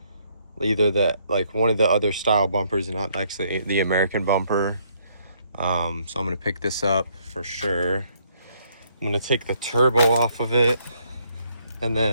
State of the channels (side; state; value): both; inverted; correlation -0.69